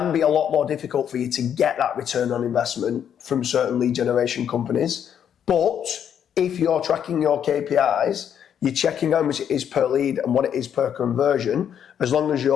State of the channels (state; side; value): quieter; right; 8.9 dB